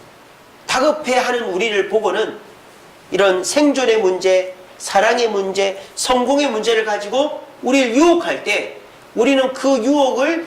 다급해하는 우리를 보고는 이런 생존의 문제, 사랑의 문제, 성공의 문제를 가지고 우리를 유혹할 때 우리는 그 유혹을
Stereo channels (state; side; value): identical; both; correlation 1.00